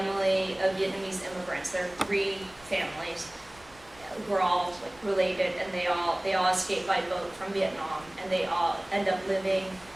of Vietnamese immigrants. There are 3 families who are all like related, and they all escaped by boat from Vietnam, and they all end up living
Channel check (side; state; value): right; noise; rumble, 25 dB below the sound